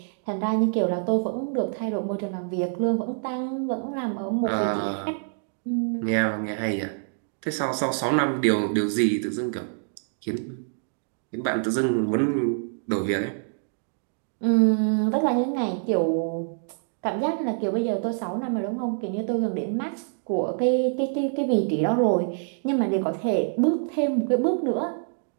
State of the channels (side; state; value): left; silent; digital silence